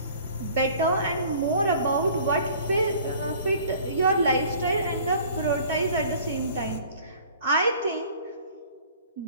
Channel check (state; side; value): inverted; both; correlation -0.50